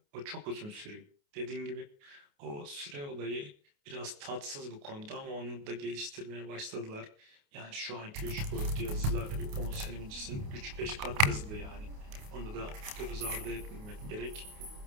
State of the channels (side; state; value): left; late; 28 ms